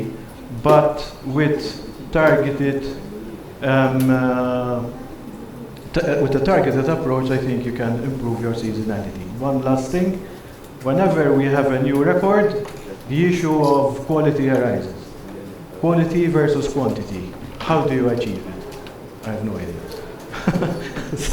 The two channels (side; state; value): both; identical; correlation 1.00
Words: but with targeted with a targeted approach, I think you can improve your seasonality. One last thing, whenever we have a new record, the issue of quality arises. Quality versus quantity. How do you achieve it? I have no idea.